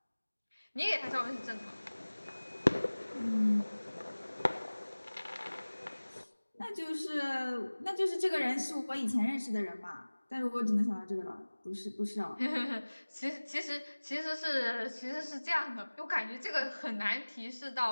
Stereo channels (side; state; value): both; inverted; correlation -1.00